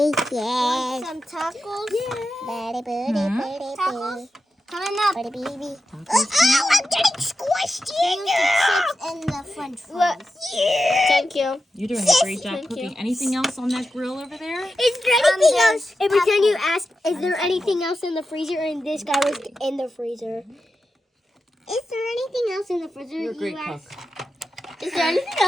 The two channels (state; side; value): normal; both; correlation 0.90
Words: Some tacos? Yeah. Tacos? Coming up. Baby. Oh, I'm getting squished in chips and the french fries. Thank you. You're doing a great job Thank cooking. you. Anything else on that grill over there? Is there anything else? there's But can you ask, is there anything else in the freezer? And this guy was in the freezer. Is there anything else in the freezer? You're a great you cook. asked? Is there anything